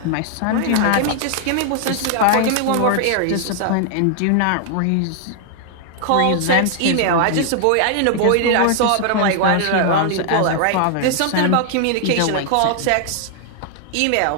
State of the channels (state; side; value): different; both; correlation 0.00